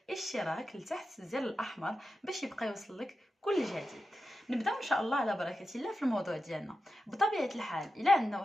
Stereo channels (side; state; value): both; normal; correlation 0.90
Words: اشتراك لتحت الزر الاحمر باش يبقى يوصلك كل جديد. نبداو ان شاء الله على بركه الله في الموضوع ديالنا. بطبيعه الحال الا عندنا